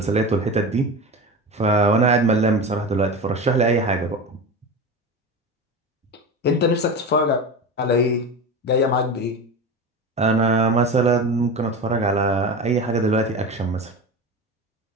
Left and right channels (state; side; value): normal; both; correlation 0.26